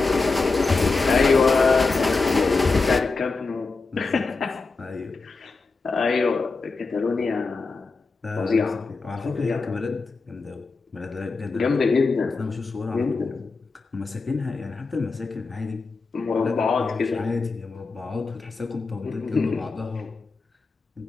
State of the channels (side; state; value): right; quieter; 4.0 dB